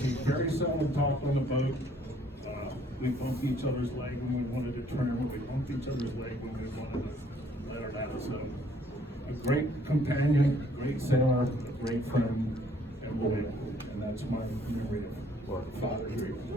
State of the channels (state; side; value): normal; both; correlation 0.62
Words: He very seldom talked on the boat. We bumped each other's leg when we wanted to trim. We bumped each other's leg when we wanted to let her out. So, a great companion, a great sailor, a great friend, and loyal. And that's my memory of Father Drew.